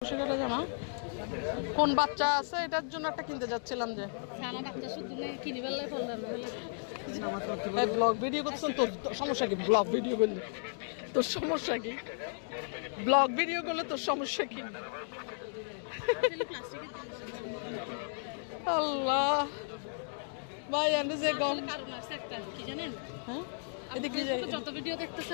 জামা কোন বাচ্চা আছে এটার জন্য একটা কিনতে যাচ্ছিলাম যে ব্লগ ভিডিও করতেছেন। তোর সমস্যা কি? ব্লগ ভিডিও করলে তোর সমস্যা কি? ব্লগ ভিডিও করলে তোর সমস্যা কি? আল্লাহ ভাই আমি যে গম কি জানেন, হ্যাঁ এদিকে যত ভিডিও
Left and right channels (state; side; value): silent; right; digital silence